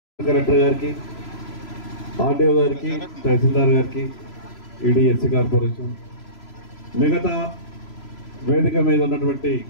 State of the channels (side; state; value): right; late; 3.0 ms